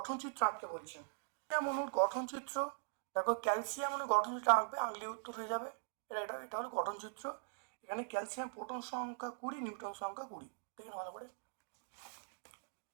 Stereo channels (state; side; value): silent; left; digital silence